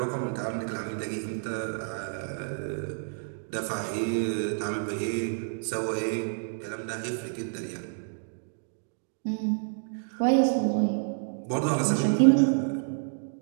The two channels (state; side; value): silent; left; digital silence